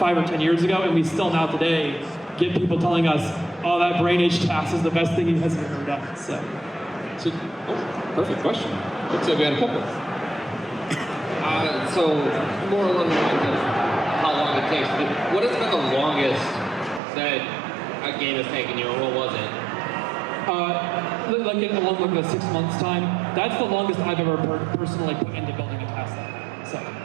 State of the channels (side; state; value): left; drops out; at 17.0 s